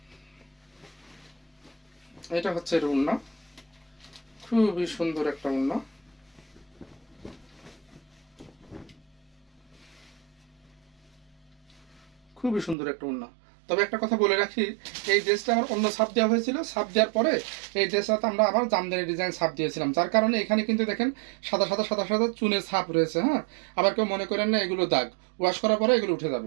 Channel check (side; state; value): left; drops out; at 12.8 s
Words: এটা হচ্ছে এর ওড়না, খুবই সুন্দর একটা ওড়না। খুবই সুন্দর একটা ওড়না। তবে একটা কথা বলে রাখি, এই ড্রেসটা আমার অন্য ছাপ দেওয়া হয়েছিল, ছাপ দেওয়ার পরে এই ড্রেসটাতে আমরা আবার জামদানি ডিজাইন ছাপ দিয়েছিলাম, যার কারণে এখানে কিন্তু দেখেন সাদা সাদা সাদা সাদা চুনের ছাপ রয়েছে। হ্যাঁ, আবার কেউ মনে করেন না এগুলো দাগ, ওয়াশ করার পরে এগুলো উঠে